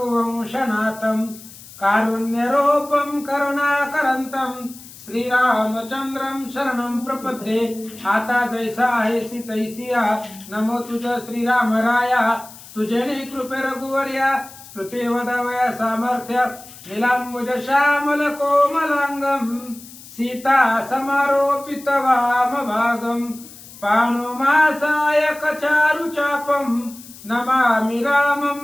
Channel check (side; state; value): left; noise; hiss, 18 dB below the sound